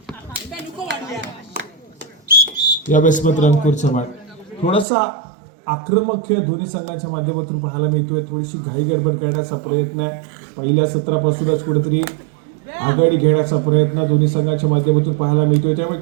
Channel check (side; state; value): left; drops out; at 4.9 s